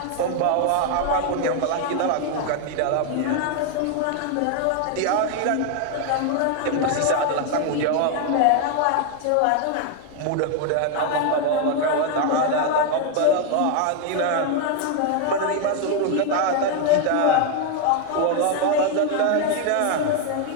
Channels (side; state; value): both; different; correlation 0.00